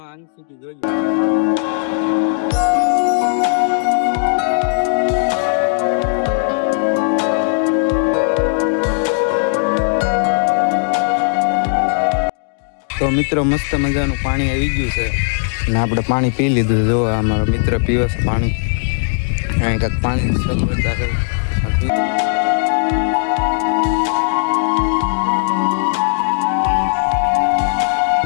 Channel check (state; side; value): silent; right; digital silence